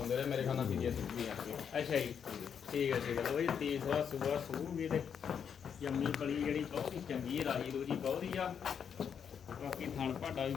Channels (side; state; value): right; quieter; 7.5 dB